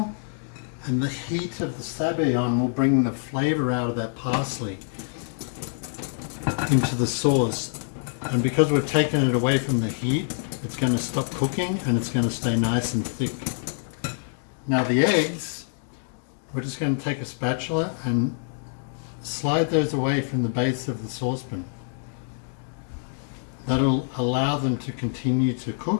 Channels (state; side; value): silent; right; digital silence